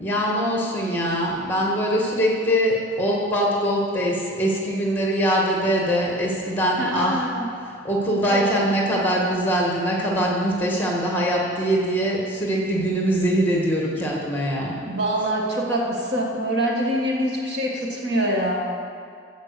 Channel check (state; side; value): normal; both; correlation 0.39